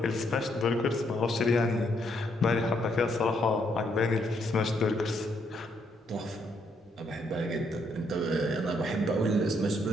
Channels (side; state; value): both; normal; correlation 0.73